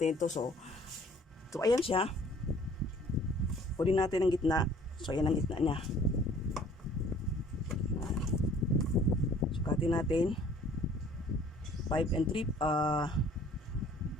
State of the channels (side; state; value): both; normal; correlation 0.54